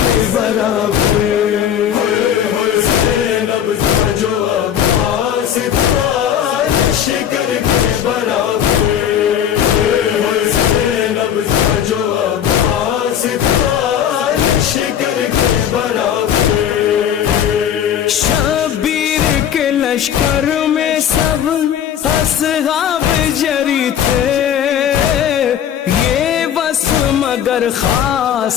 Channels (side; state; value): right; quieter; 9.4 dB